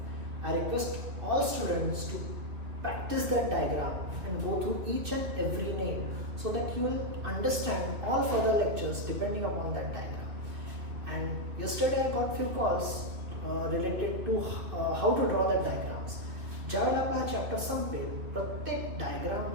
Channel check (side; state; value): left; late; 2.8 ms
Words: I request all students to practice that diagram and go through each and every name so that you will understand all further lectures depending upon that diagram. And yesterday I got few calls related to how to draw that diagrams. ज्यावेळेला आपला हा चॅप्टर संपेल प्रत्येक